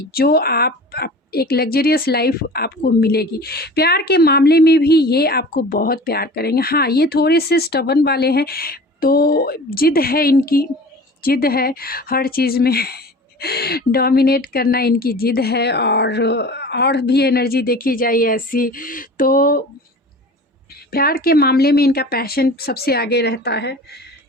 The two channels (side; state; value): both; normal; correlation 0.40